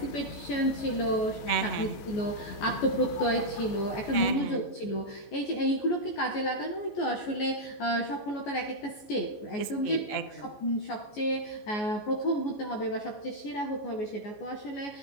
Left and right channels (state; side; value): late; right; 14 ms